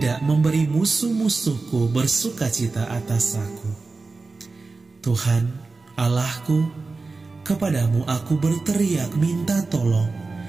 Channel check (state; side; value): quieter; left; 3.8 dB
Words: memberi musuh-musuhku bersukacita atas aku. Tuhan, Allahku, kepadamu aku berteriak minta tolong,